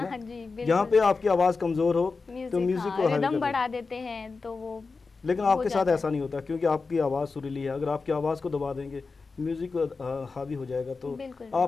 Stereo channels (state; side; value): quieter; right; 4.3 dB